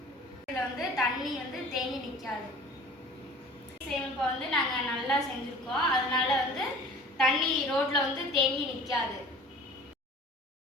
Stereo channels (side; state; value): both; normal; correlation 0.44